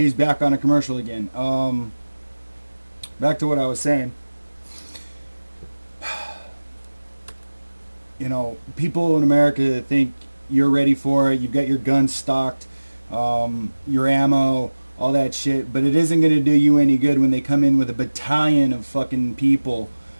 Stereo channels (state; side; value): inverted; both; correlation -1.00